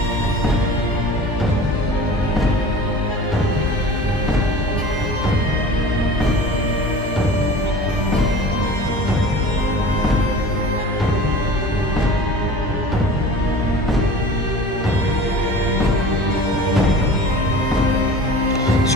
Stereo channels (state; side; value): normal; both; correlation 0.40